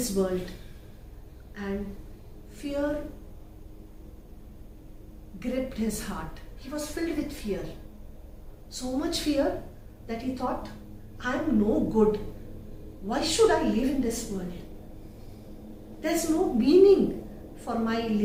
world? And fear gripped his heart. He was filled with fear. So much fear that he thought, I am no good. Why should I live in this world? There's no meaning for my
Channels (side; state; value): both; identical; correlation 1.00